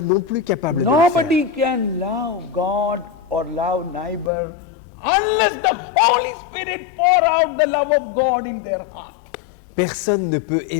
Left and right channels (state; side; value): drops out; right; at 4.3 s